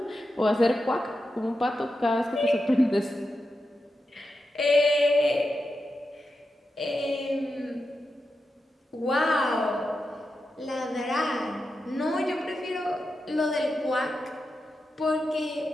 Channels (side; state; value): both; normal; correlation 0.89